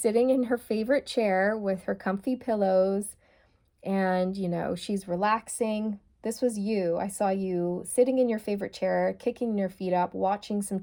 in her favorite chair with her comfy pillows and, you know, she's relaxing. This was you. I saw you sitting in your favorite chair, kicking your feet up, watching some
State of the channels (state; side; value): identical; both; correlation 1.00